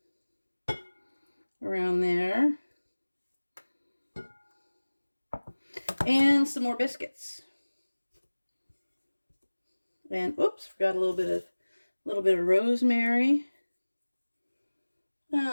Around there. And some more biscuits. And oops, forgot a little bit of rosemary.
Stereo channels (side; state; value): both; inverted; correlation -1.00